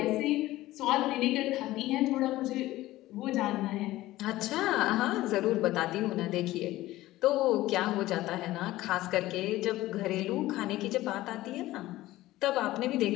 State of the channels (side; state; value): right; quieter; 16.6 dB